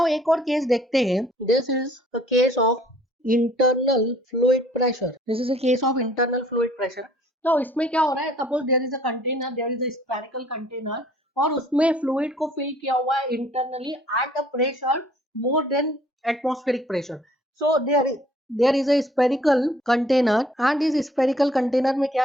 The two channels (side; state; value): both; normal; correlation 0.57